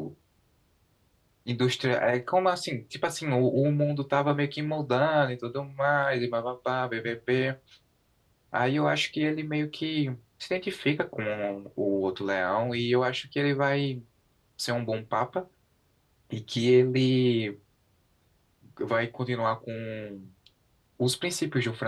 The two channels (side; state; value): both; identical; correlation 1.00